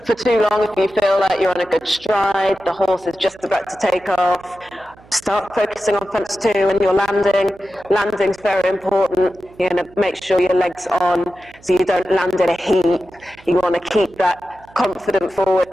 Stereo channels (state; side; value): noise; right; hum, 26 dB below the sound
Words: for too long. If you feel like you're on a good stride, the horse is just about to take off, start focusing on fence 2 and your landing. Landing's very important. You want to make sure your leg's on so you don't land in a heap. You want to keep that confident forward